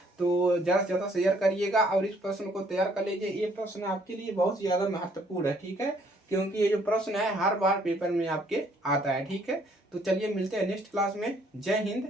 तो ज्यादा से ज्यादा शेयर करिएगा और इस प्रश्न को तैयार कर लीजिए। ये प्रश्न आपके लिए बहुत ज्यादा महत्वपूर्ण है। ठीक है, क्योंकि ये जो प्रश्न है हर बार पेपर में आपके आता है। ठीक है, तो चलिए मिलते हैं नेक्स्ट क्लास में। जय हिंद,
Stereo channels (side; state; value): both; normal; correlation 0.64